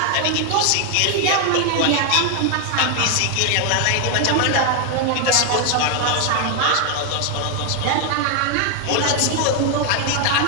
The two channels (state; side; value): different; both; correlation 0.00